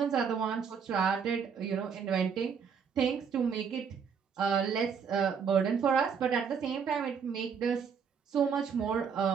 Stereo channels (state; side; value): quieter; left; 6.6 dB